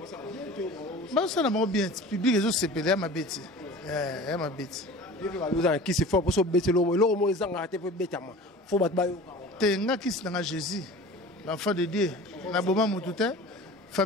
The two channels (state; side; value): normal; both; correlation 0.40